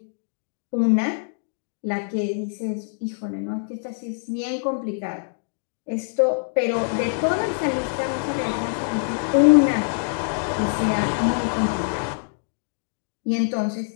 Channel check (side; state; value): right; silent; digital silence